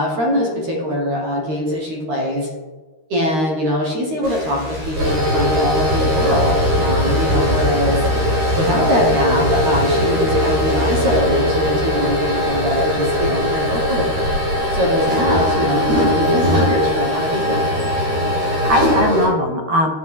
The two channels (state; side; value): late; left; 13 ms